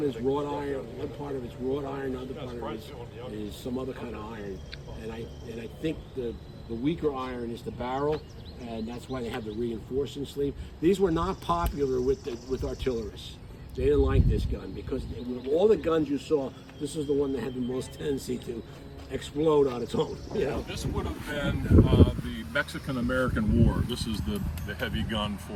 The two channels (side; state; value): both; identical; correlation 1.00